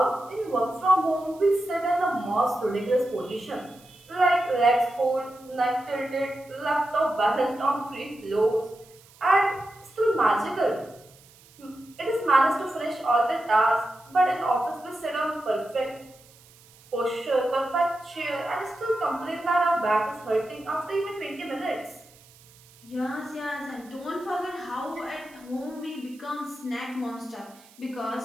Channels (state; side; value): noise; right; hiss, 26 dB below the sound